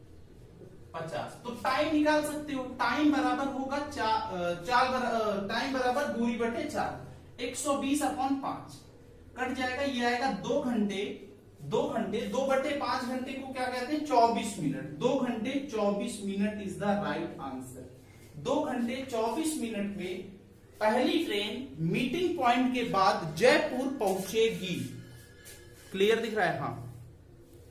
तो टाइम निकाल सकते हो, टाइम बराबर होगा टाइम बराबर दूरी बटे 4, 120/5 कट जाएगा, ये आएगा 2 घंटे 2/5 घंटे को क्या कहते हैं 24 मिनट, 2 घंटे 24 minute is the right answer. 2 घंटे 24 मिनट में पहली ट्रेन मीटिंग पॉइंट के बाद जयपुर पहुंचेगी। क्लियर दिख रहा है? हाँ,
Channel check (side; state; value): both; identical; correlation 1.00